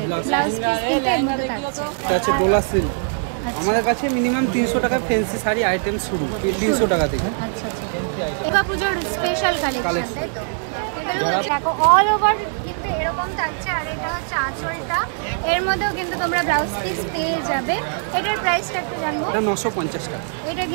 ব্লাউজ পিস এটা আছে ডোলা সিল্ক। আমাদের কাছে মিনিমাম 300 টাকায় ফ্যান্সি শাড়ি আইটেম শুরু, 300 টাকা থেকে। আচ্ছা এবার পুজোর স্পেশাল কালেকশন, তাই তো? এগুলো দেখো অল ওভার কিন্তু এরকম থাকছে। আর এটা হচ্ছে আঁচলটা, এর মধ্যেও কিন্তু তোমরা ব্লাউজ পিস পেয়ে যাবে। এটার প্রাইসটা একটু জানবো। এটা 950 টাকা। এটা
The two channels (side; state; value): left; silent; digital silence